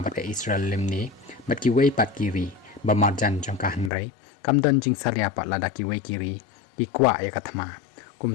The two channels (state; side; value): drops out; right; at 3.9 s